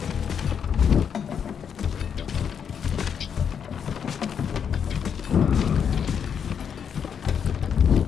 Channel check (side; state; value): right; quieter; 7.5 dB